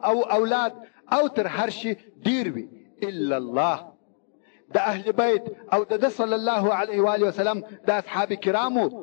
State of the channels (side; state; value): right; silent; digital silence